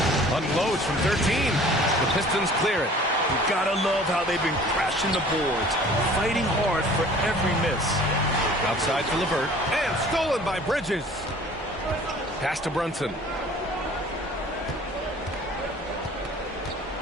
Unloads from 13. The Pistons clear it. You gotta love how they've been crashing the boards, fighting hard for every miss. Outside for LeVert, and stolen by Bridges. Pass to Brunson.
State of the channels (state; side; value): normal; both; correlation 0.49